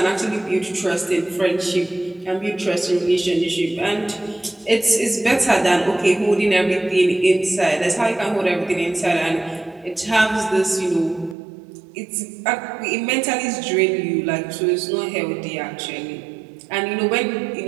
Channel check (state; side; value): drops out; left; at 11.4 s